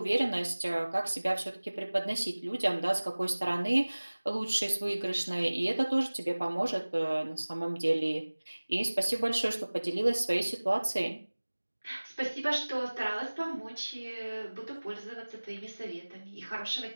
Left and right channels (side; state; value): both; inverted; correlation -1.00